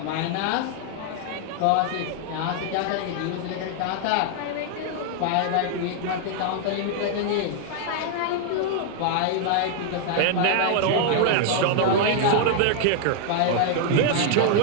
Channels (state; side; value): different; both; correlation 0.00